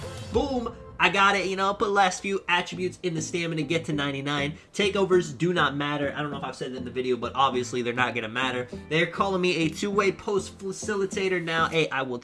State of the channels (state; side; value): identical; both; correlation 1.00